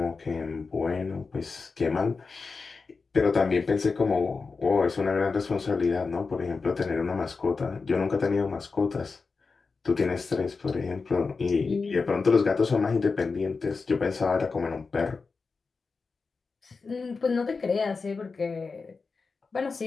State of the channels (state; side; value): quieter; right; 4.5 dB